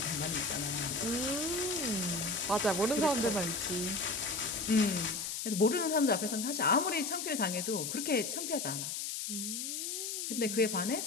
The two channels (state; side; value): noise; left; hiss, 3 dB below the sound